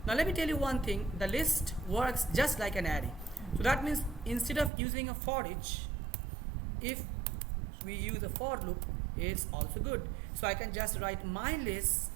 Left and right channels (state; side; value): drops out; left; at 4.7 s